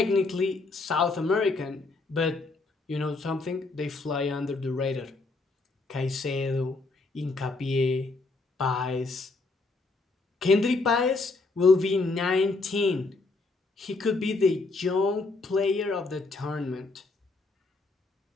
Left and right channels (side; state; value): right; quieter; 3.6 dB